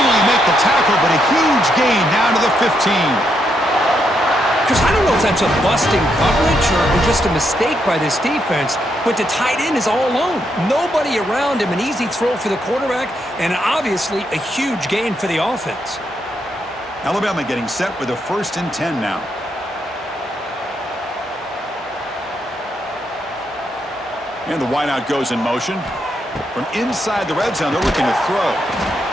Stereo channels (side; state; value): both; normal; correlation 0.79